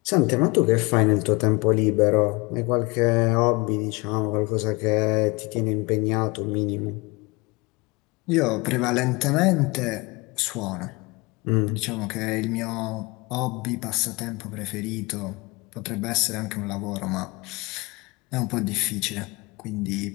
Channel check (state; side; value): quieter; right; 25.7 dB